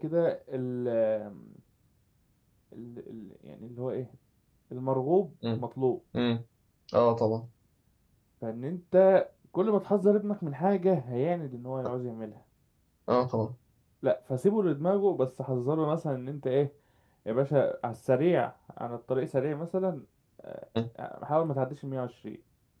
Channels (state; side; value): identical; both; correlation 1.00